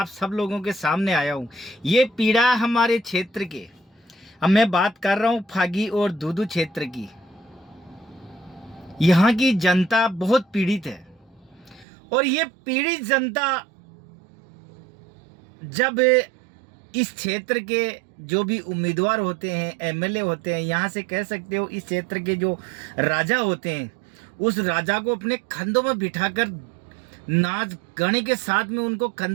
सब लोगों के सामने आया हूँ। ये पीड़ा हमारे क्षेत्र के, अब मैं बात कर रहा हूँ फागी और दूदू क्षेत्र की। यहाँ की जनता बहुत पीड़ित है और ये पीड़ित जनता जब इस क्षेत्र के जो भी उम्मीदवार होते हैं, एमएलए होते हैं, यहाँ से कह सकते हो इस क्षेत्र के जो राजा होते हैं, उस राजा को अपने कंधों में बिठाकर नाच गाने के साथ में उनको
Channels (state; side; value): drops out; left; at 11.9 s